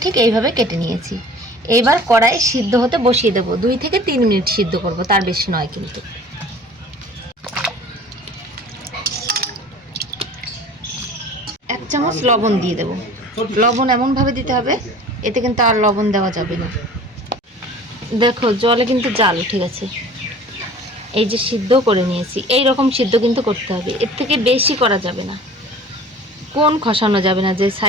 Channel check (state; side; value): normal; both; correlation 0.44